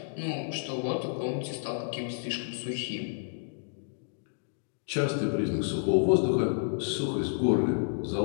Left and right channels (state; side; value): silent; right; digital silence